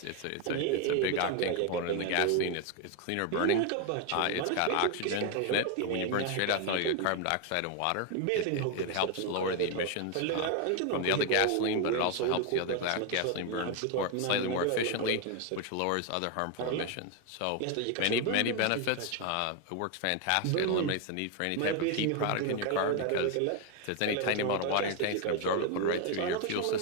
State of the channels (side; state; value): both; different; correlation 0.01